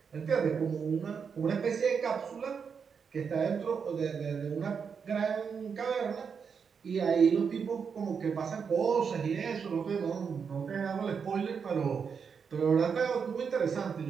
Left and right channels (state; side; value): quieter; left; 6.3 dB